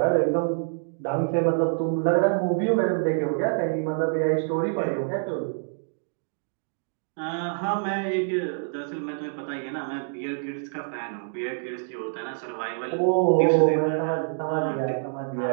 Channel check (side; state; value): left; silent; digital silence